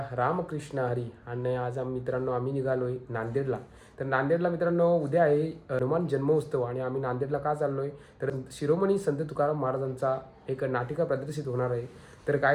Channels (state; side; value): identical; both; correlation 1.00